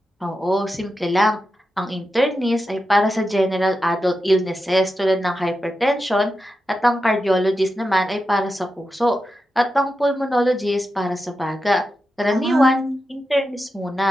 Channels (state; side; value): normal; both; correlation 0.90